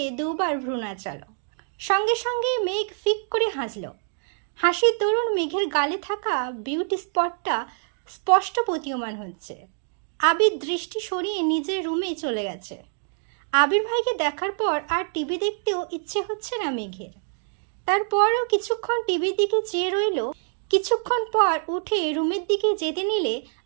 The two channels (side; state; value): left; silent; digital silence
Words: দুবার ভ্রু নাচালো। সঙ্গে সঙ্গে মেঘ ফিক করে হাসল। হাসির দরুন মেঘের গালে থাকা বিউটি স্পটটা স্পষ্ট প্রতীয়মান হচ্ছে। আবির দৃষ্টি সরিয়ে নিজের রুমে চলে গেছে। আবির ভাইকে দেখার পর আর টিভি দেখতেও ইচ্ছে হচ্ছে না মেঘের। তারপরও কিছুক্ষণ টিভির দিকে চেয়ে রইল। কিছুক্ষণ পর উঠে রুমের দিকে যেতে নিলে